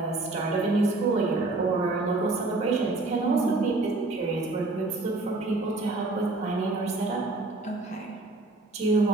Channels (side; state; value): left; quieter; 3.1 dB